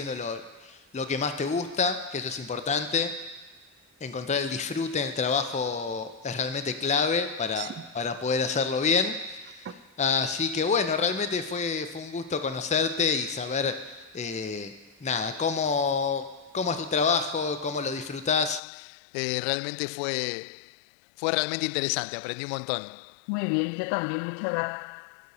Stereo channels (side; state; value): right; drops out; at 18.6 s